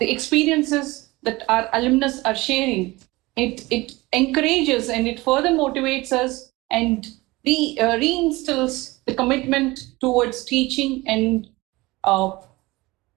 experiences that our alumnus are sharing, it encourages and it further motivates us and reinstills the commitment towards teaching and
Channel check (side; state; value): left; quieter; 21.3 dB